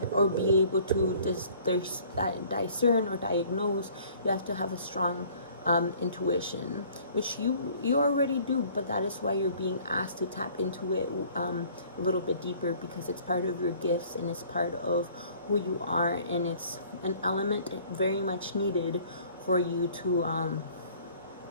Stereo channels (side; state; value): both; inverted; correlation -0.54